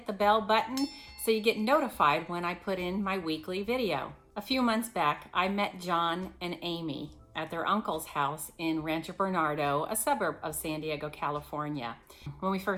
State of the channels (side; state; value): both; identical; correlation 1.00